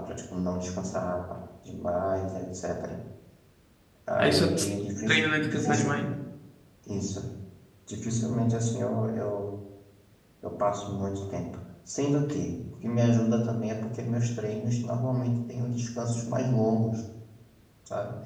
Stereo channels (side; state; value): both; identical; correlation 1.00